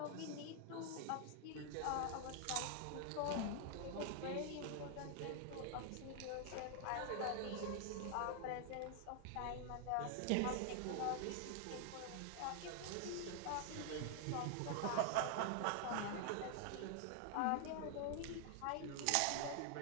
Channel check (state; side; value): different; both; correlation 0.00